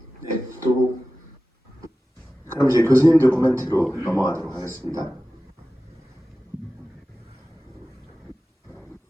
네, 또 그럼 이제 교수님들 코멘트로 넘어가도록 하겠습니다.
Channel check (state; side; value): normal; both; correlation 0.95